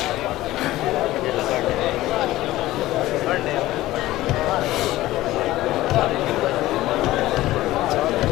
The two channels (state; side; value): quieter; right; 16.4 dB